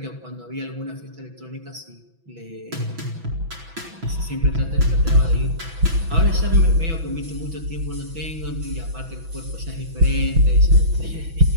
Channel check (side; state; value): left; late; 6.1 ms